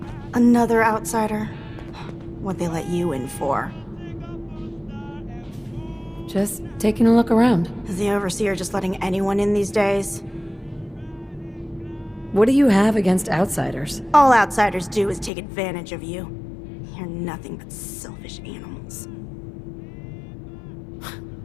Another outsider? What'd they let you in for? Just taking a look around. Is the Overseer just letting anyone in these days? What do you have against outsiders? All outsiders do is take advantage of you. You're nothing but selfish animals.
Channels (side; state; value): right; drops out; at 15.3 s